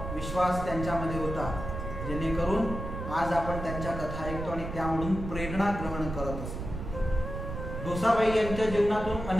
विश्वास त्यांच्यामध्ये होता, जेणेकरून आज आपण त्यांच्या कथा ऐकतो आणि त्यामधून प्रेरणा ग्रहण करत असतो. डोसाबाई यांच्या जीवनातून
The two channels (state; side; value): noise; right; rumble, 7 dB below the sound